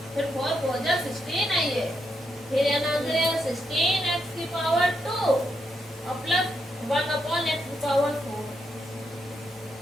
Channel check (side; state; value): both; normal; correlation 0.81